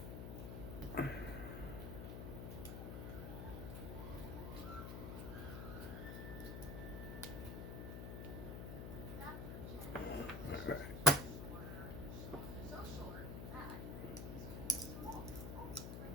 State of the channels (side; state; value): left; noise; hum, 4 dB below the sound